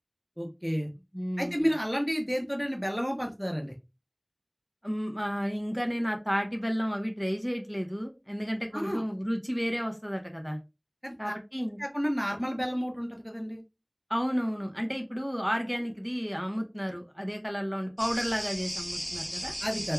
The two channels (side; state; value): both; identical; correlation 1.00